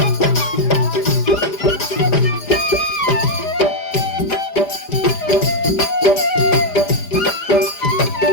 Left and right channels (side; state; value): right; late; 5.0 ms